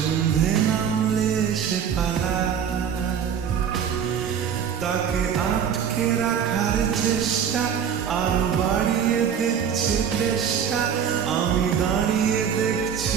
নামলে সে পালায়, তাকে আটকে রাখার চেষ্টা আরো বাড়িয়ে দিচ্ছে চেষ্টা, আমি দাঁড়িয়ে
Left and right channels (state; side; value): quieter; left; 8.0 dB